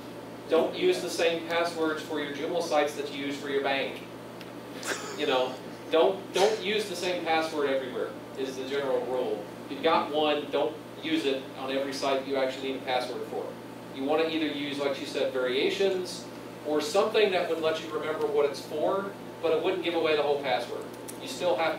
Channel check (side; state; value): both; identical; correlation 1.00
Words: Don't use the same passwords for your Joomla sites that you use for your bank. You know, don't use the same password everywhere is the general rule. If you've got one, don't use it on every site you actually need a password for. You want to either use, like you said, variations or something that would let you remember what it's for, but it wouldn't give away the whole password. You still have